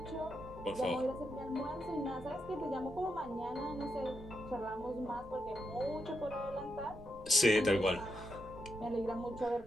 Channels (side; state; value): right; noise; rumble, 18 dB below the sound